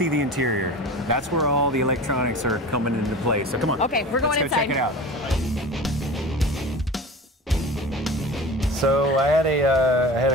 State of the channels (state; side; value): normal; both; correlation 0.35